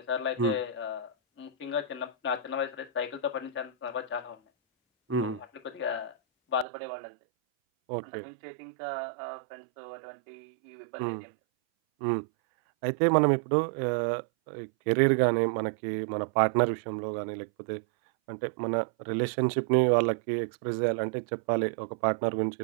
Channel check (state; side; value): drops out; left; at 6.7 s